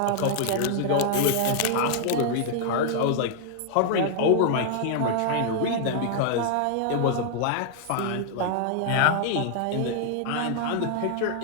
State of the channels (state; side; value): different; both; correlation 0.00